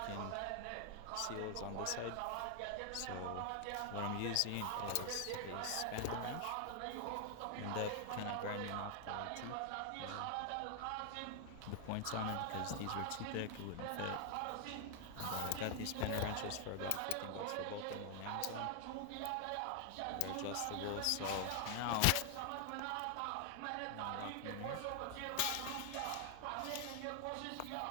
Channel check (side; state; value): both; different; correlation 0.00